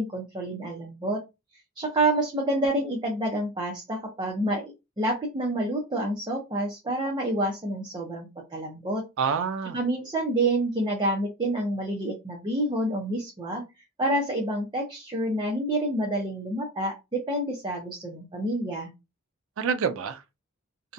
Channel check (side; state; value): both; normal; correlation 0.24